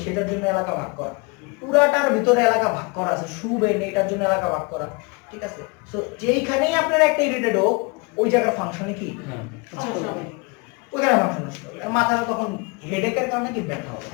সেটার জন্য এলাকা ভাগ করা, পুরাটার ভিতরে এলাকা ভাগ করা আছে, শুবেন এটার জন্য এলাকা ভাগ করা, ঠিক আছে? সো যেইখানেই আপনার একটা ইরিটেট হোক ওই জায়গার ফাংশনে কি ওইখানে ফাংশন নষ্ট হবে, মাথাটা তখন হেডেকের কারণে কি ব্যথা হবে।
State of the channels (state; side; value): quieter; right; 29.5 dB